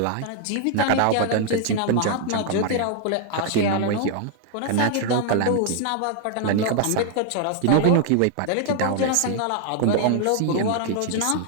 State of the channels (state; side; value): different; both; correlation 0.00